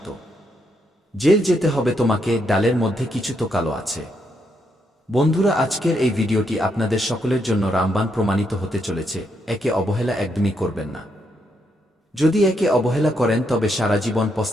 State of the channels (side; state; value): both; normal; correlation 0.78